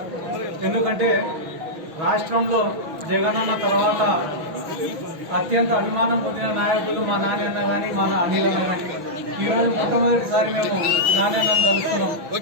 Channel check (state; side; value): late; left; 6.1 ms